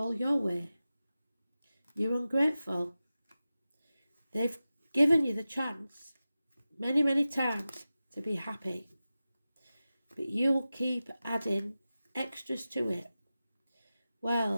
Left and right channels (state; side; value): inverted; both; correlation -0.94